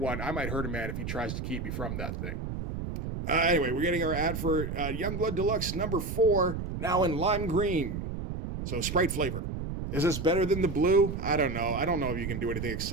I might hurt a man if he tries to keep me from that thing. Anyway, we're getting our ad for Youngblood Deluxe number 4, now in lime green. So Sprite flavor. Is this better than the blue? I don't know. I don't know if you can do anything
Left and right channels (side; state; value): right; noise; rumble, 5 dB below the sound